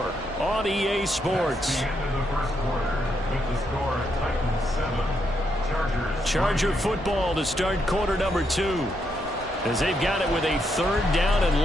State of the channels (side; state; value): both; normal; correlation 0.79